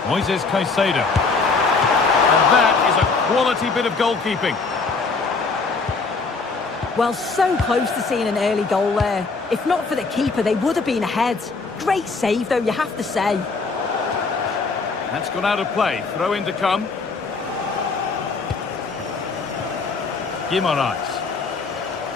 Moises Caicedo. And that is a quality bit of goalkeeping. Well, so close to seeing an early goal there. If not for the keeper, they would have been ahead. Great save, though, you have to say. That's gone out of play. Throw in to come. Guimaraes.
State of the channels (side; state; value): right; quieter; 4.3 dB